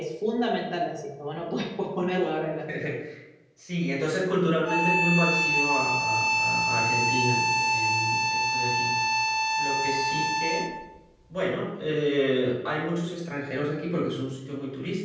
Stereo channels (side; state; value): both; identical; correlation 1.00